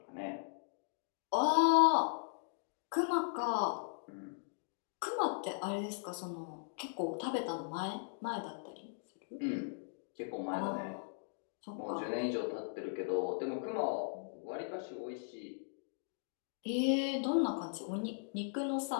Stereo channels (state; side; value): silent; right; digital silence